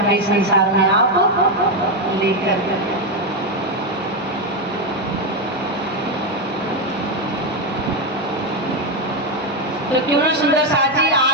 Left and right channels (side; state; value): both; normal; correlation 0.07